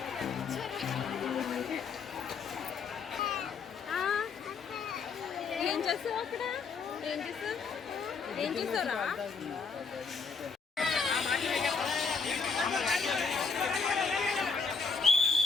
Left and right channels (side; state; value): right; quieter; 5.2 dB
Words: ఏం చేస్తావు? అక్కడ ఏం చేస్తావు? ఏం చూసారా?